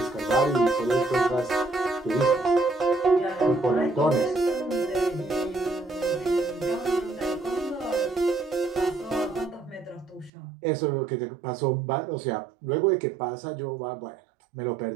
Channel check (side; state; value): left; drops out; at 10.3 s